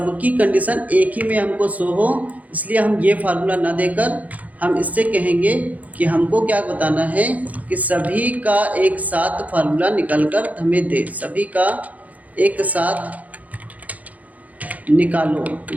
कंडीशन एक ही में हमको शो हो, इसलिए हम ये फार्मूला ना देकर हम इससे कहेंगे कि हमको क्या बताना है कि सभी का एक साथ फार्मूला निकल कर हमें दे। सभी का एक साथ निकालो।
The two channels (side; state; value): left; late; 0.075 ms